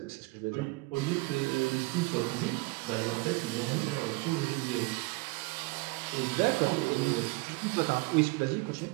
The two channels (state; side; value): quieter; left; 25.2 dB